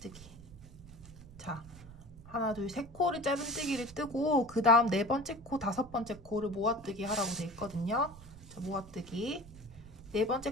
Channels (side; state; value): right; noise; rumble, 18 dB below the sound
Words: 자, 하나, 둘, 세 코를 짧은뜨기를 뜨고 그 다음 4번째 코, 5번째 코를 모아뜨기 하라고 되어 있거든요. 자, 모아뜨기.